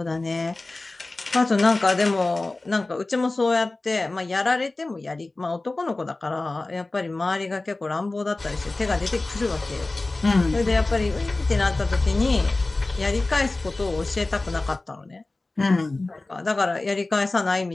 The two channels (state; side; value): quieter; right; 3.1 dB